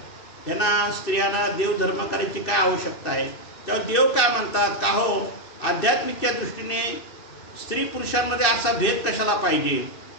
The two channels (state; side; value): late; right; 2.7 ms